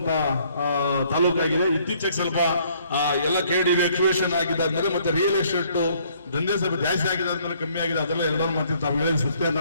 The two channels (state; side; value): inverted; both; correlation -0.64